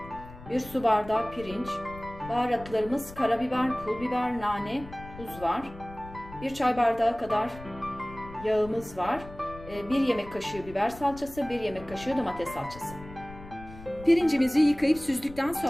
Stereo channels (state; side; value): noise; left; rumble, 16 dB below the sound